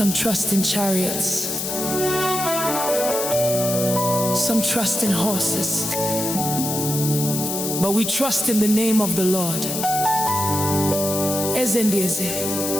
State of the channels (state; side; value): noise; left; hiss, 3 dB below the sound